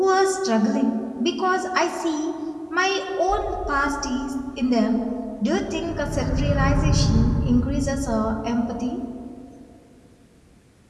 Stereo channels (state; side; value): identical; both; correlation 1.00